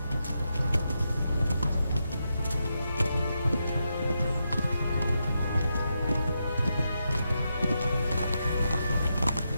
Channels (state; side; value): inverted; both; correlation -0.85